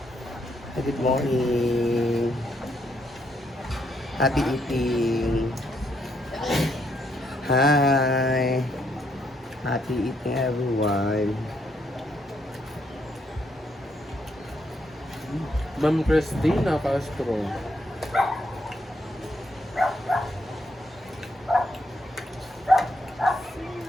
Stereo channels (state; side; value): normal; both; correlation 0.75